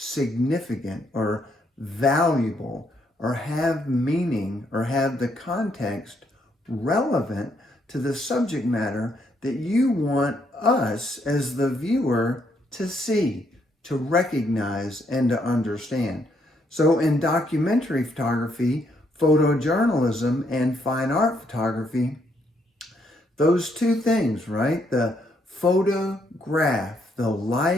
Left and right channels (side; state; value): both; normal; correlation 0.73